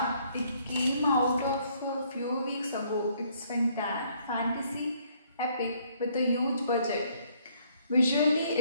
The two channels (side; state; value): both; inverted; correlation -0.66